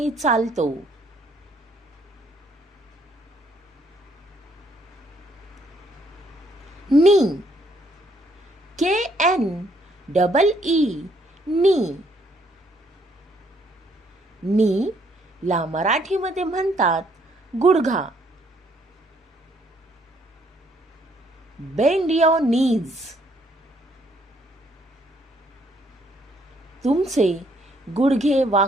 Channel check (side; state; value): both; normal; correlation 0.68